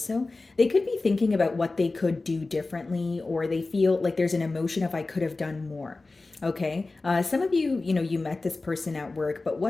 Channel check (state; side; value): quieter; right; 3.4 dB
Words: They could be thinking about what they could do differently, or they feel like there's an emotion of I could have done more. Okay, some of you, you met this person at work, but